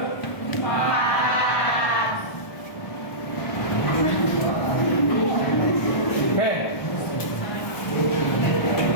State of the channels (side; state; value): right; late; 1.2 ms